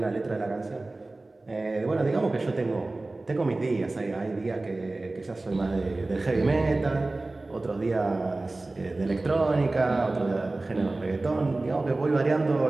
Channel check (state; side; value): quieter; left; 3.1 dB